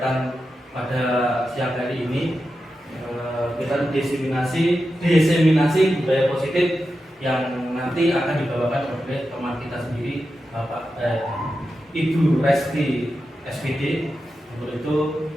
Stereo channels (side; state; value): both; normal; correlation 0.90